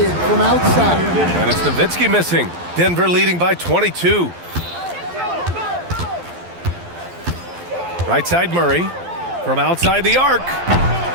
from outside. And it's Nowitzki missing. Denver leading by 22. Right side Murray from outside the arc.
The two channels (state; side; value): late; left; 12 ms